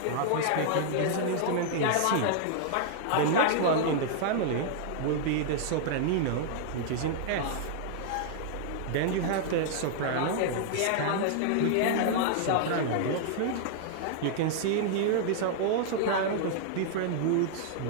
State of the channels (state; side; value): different; both; correlation -0.01